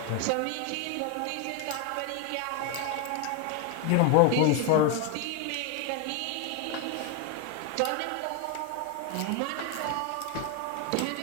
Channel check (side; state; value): both; different; correlation 0.01